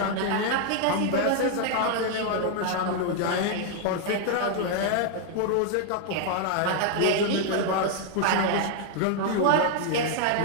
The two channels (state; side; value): different; both; correlation 0.00